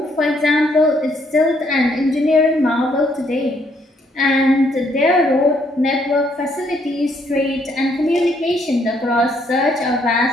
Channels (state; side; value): normal; both; correlation 0.70